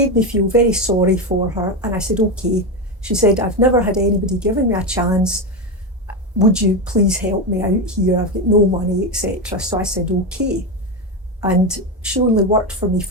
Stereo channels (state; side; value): normal; both; correlation 0.13